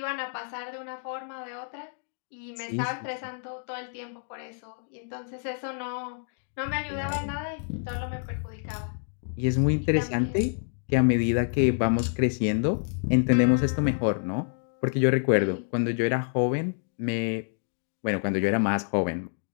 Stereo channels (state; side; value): silent; right; digital silence